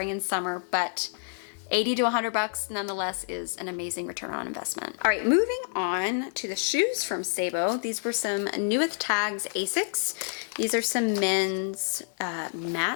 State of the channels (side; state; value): right; silent; 58 dB below the other